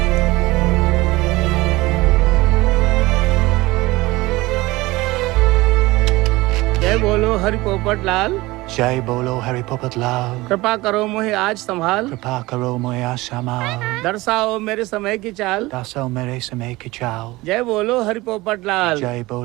जय बोलो हरि पोपट लाल। जय बोलो हरि पोपट लाल। कृपा करो मुझे आज संभाल। कृपा करो मुझे आसमां। दर्शाओ मेरे समय की चाल। दर्शाओ मेरे समय की चाल। जय बोलो हरि पोपट लाल। जय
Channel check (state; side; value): quieter; left; 20.5 dB